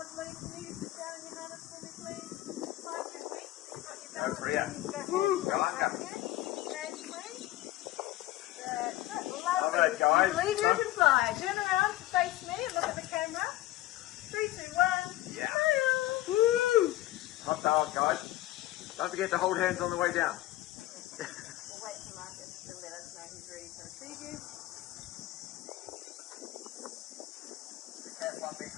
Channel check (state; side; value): quieter; right; 16.2 dB